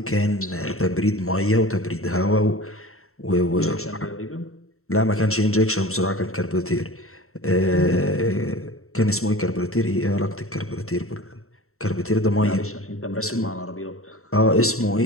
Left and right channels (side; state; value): right; late; 0.63 ms